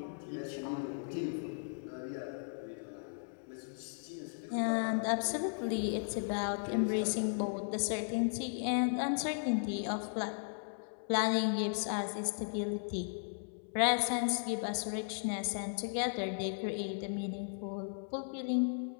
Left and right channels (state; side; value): silent; right; digital silence